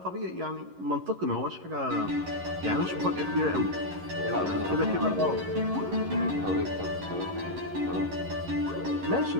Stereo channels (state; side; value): late; left; 11 ms